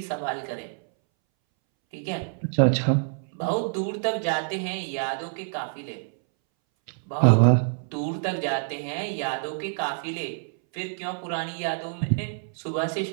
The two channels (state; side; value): silent; left; 60 dB below the other